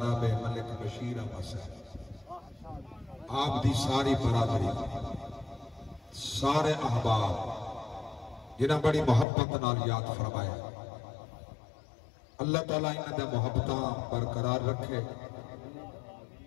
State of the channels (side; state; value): right; drops out; at 9.2 s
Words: ملک بشیر احمد صاحب آپ دی ساری برادری سارے احباب جنہاں بڑی محبت نال یاد فرمایا اللہ تعالیٰ انہاں دے محبتاں برقرار رکھے